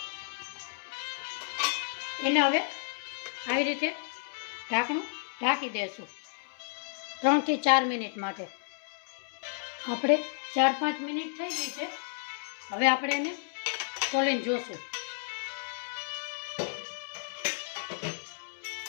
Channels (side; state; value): right; silent; 56 dB below the other